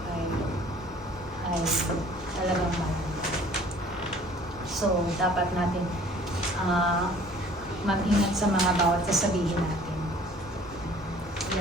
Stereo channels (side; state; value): both; normal; correlation 0.52